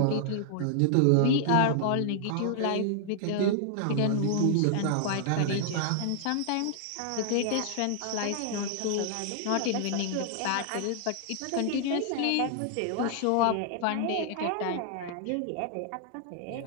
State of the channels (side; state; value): both; different; correlation 0.00